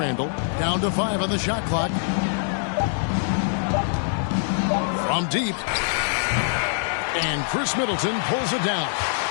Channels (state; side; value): silent; right; digital silence